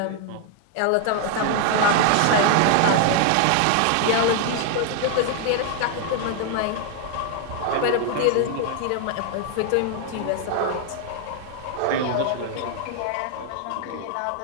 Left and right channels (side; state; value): both; different; correlation 0.00